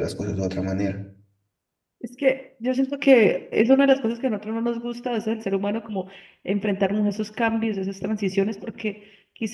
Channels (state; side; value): identical; both; correlation 1.00